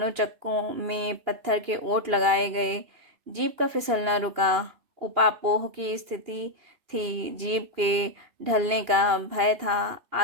चक्कों में पत्थर के ओट लगाए गए। जीप का फिसलना रुका। उपापोह की स्थिति थी। जीप के ढलने का भय था।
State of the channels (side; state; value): left; late; 2.8 ms